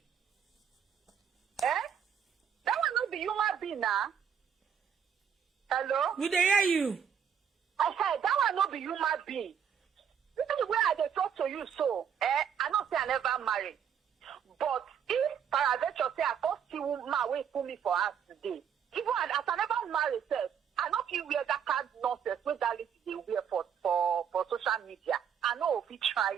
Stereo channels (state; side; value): quieter; left; 8.0 dB